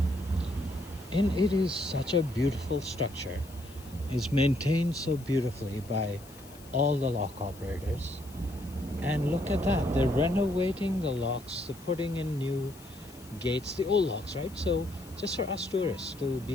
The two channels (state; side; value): noise; left; hiss, 21 dB below the sound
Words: And it is such a beautiful structure. It's maintained so beautifully by all the lock operators. And look at that, they're renovating the locks, they're putting in new gates, the old locks, right? So just for us tourists to